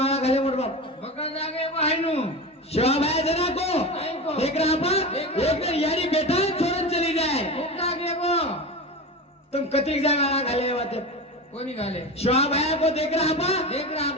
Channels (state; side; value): normal; both; correlation 0.25